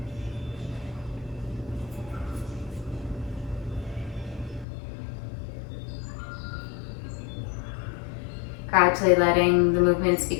Gradually letting the movements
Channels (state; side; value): drops out; right; at 4.7 s